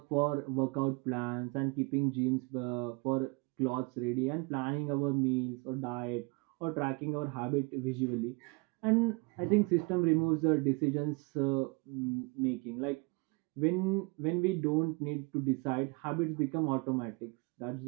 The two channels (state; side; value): quieter; left; 29.7 dB